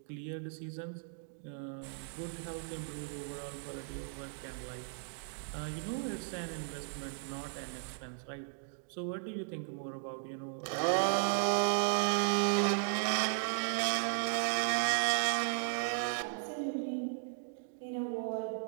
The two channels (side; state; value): left; silent; digital silence